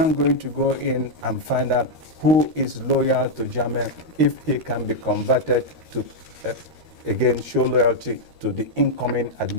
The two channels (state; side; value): late; left; 13 ms